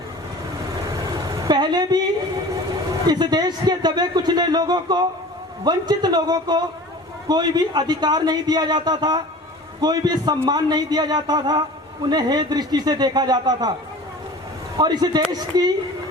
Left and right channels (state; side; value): normal; both; correlation 0.40